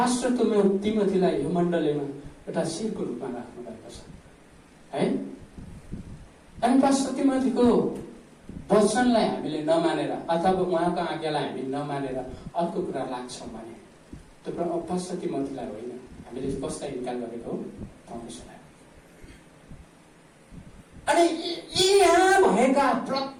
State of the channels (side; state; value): both; identical; correlation 1.00